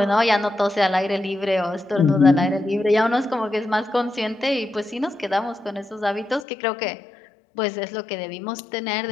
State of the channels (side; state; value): right; drops out; at 6.5 s